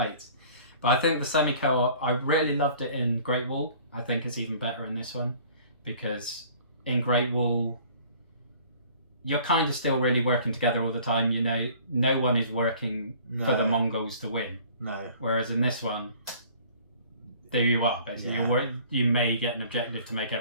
But I think the semi-co-op, I really loved it in Great Wall. I think it's even better in this one, because in Great Wall, you're kind of still really working together all the time. You know, no one is working for the Mongols to win. No. Whereas in this one, there you are, basically. Yeah. You may get an objective to make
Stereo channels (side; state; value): both; inverted; correlation -0.51